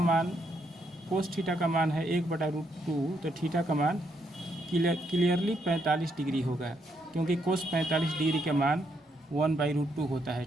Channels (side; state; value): both; normal; correlation 0.76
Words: का मान है 1/√2, तो थीटा का मान क्लियरली 45 डिग्री होगा, क्योंकि cos 45 डिग्री का मान 1/√2 होता है।